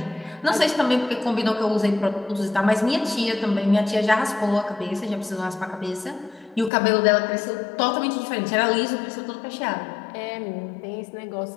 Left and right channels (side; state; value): right; drops out; at 6.7 s